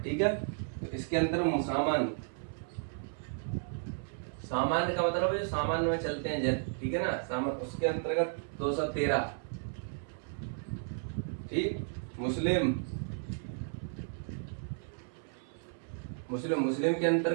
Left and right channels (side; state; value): left; silent; 55 dB below the other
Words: ठीक है। तो इसके अंदर सामान्य, सामान्य का मतलब है जो सामान्य में चलते हैं जन, ठीक है ना, सामान्य, उसके अंतर्गत 213, ठीक। मुस्लिम मुस्लिम मुस्लिम के